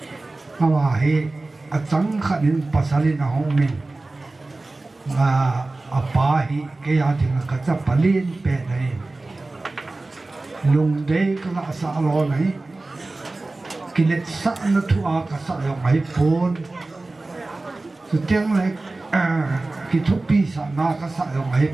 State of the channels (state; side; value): quieter; left; 3.1 dB